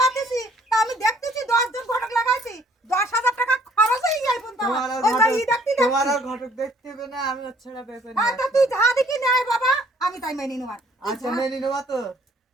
তা আমি দেখতেছি 10 জন ঘটক লাগাইছি, 10,000 টাকা খরচ হয়ে যায় পর্যন্ত। তোমার আর ঘটক দেখতে হবে না, আমি ওর ছাড়া বিয়ে করি না। তা তুই যা দেখি নেয় বাবা, আমি তাই মেনে নেব। আচ্ছা মেনে নেবো তো?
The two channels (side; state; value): both; normal; correlation 0.60